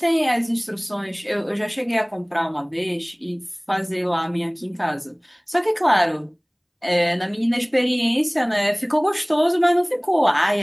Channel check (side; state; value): both; identical; correlation 1.00